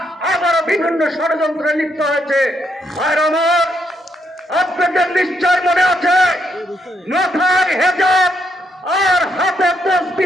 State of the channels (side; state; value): both; normal; correlation 0.77